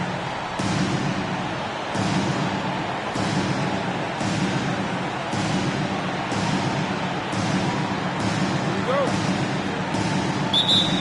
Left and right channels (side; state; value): both; identical; correlation 1.00